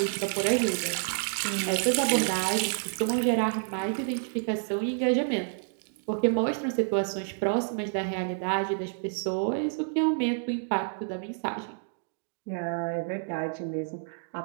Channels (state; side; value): silent; left; digital silence